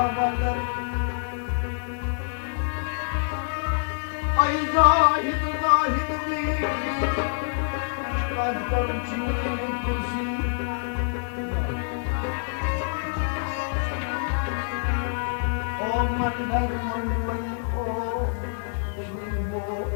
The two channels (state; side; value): silent; right; digital silence